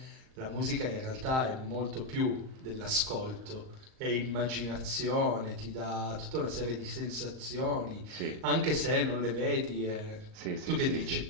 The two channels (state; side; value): late; left; 38 ms